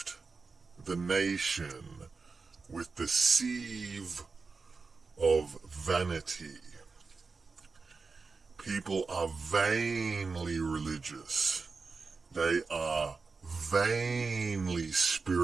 the nation with the sieve of vanity. People are vainly religious. They are vainly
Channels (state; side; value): quieter; left; 4.4 dB